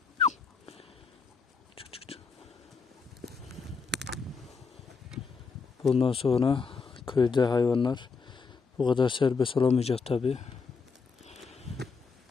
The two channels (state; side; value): quieter; right; 5.0 dB